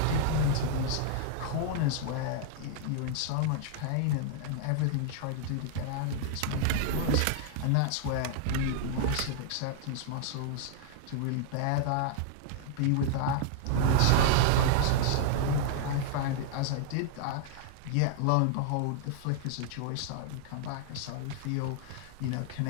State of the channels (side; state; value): both; different; correlation -0.01